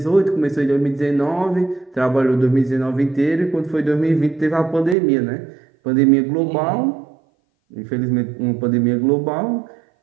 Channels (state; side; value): drops out; left; at 5.0 s